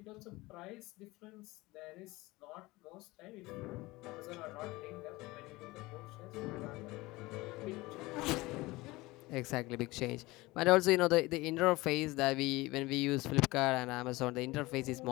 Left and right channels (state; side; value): quieter; right; 20.8 dB